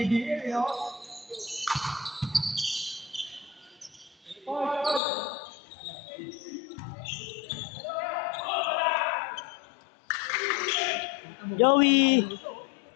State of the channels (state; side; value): drops out; right; at 5.0 s